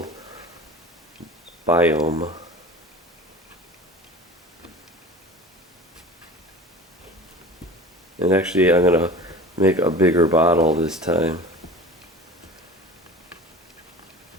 biome. And actually I'm going to make a bigger bottle this time.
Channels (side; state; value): both; normal; correlation 0.38